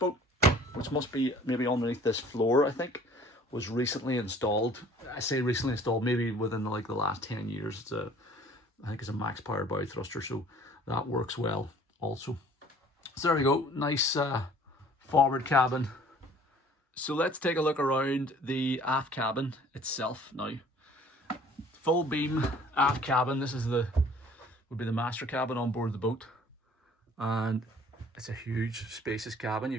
which must be maybe underneath this floor, I think, was recently installed. I say recently installed, maybe within the last 10 years. I think it's a max power bow thruster, so that works well also. So there we go, nice forward cabin. So let's take a look around the aft cabin itself now. Full beam aft cabin. This is would be the master cabin on board the boat, and it's a huge spacious cabin.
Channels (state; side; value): normal; both; correlation 0.53